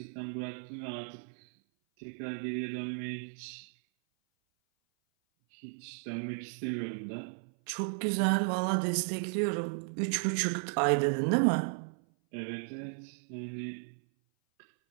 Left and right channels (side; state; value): left; silent; 55 dB below the other